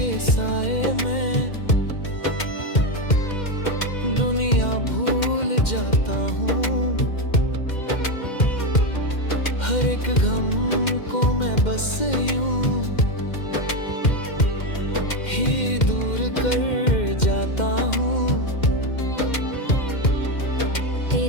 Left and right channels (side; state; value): right; late; 2.1 ms